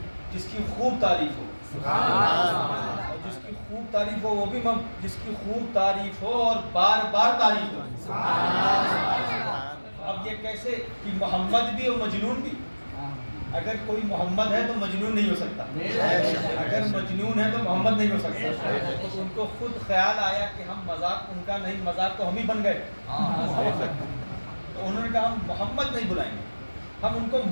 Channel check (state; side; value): inverted; both; correlation -1.00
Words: جس کی خوب تعریف ہو، اور جس کی خوب تعریف ہو وہ بھی جس کی خوب تعریف ہو اور بار بار تعریف ہو۔ اب یہ کیسے کہ محمد بھی اور مجنون بھی؟ اگر کوئی محمد ہے تو مجنون نہیں ہو سکتا، اگر مجنون ہے تو محمد نہیں ہو سکتا۔ تو ان کو خود خیال آیا کہ ہم مذاق ان کا نہیں، مذاق تو ہم ہی بن گئے، تو انہوں نے کہا ہم محمد نہیں بلائیں گے، ہم ان کو